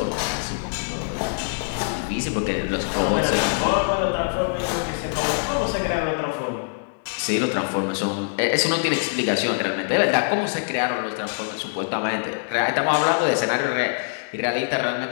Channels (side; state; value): right; silent; digital silence